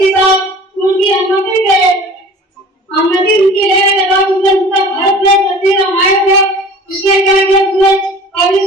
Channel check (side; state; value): both; normal; correlation 0.43